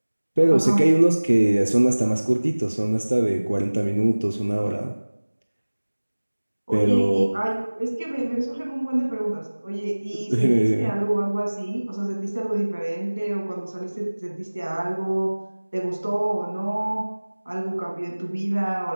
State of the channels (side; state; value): both; inverted; correlation -1.00